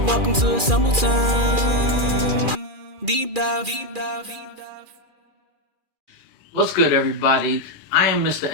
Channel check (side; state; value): left; late; 2.4 ms